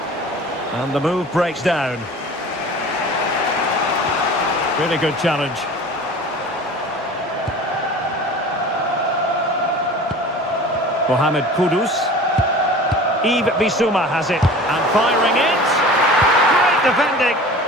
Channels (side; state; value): both; normal; correlation 0.40